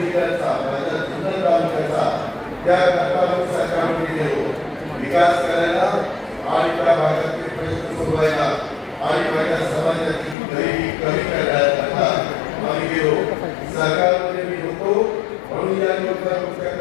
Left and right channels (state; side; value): drops out; right; at 10.4 s